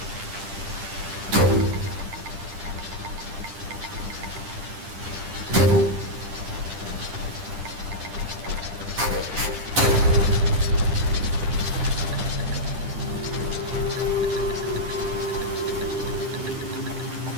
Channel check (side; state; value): left; late; 10 ms